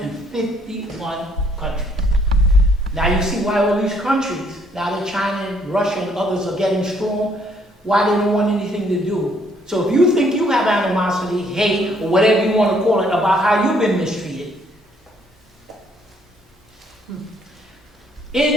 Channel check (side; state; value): both; normal; correlation 0.66